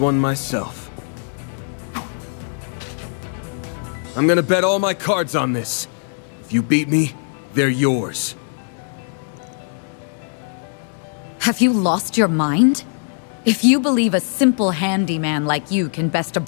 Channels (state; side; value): silent; right; 65 dB below the other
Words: myself. I'm gonna bet all my cards on this. If you beat me, they're yours. Have you lost your mind? If you believe a simple handyman like you can best a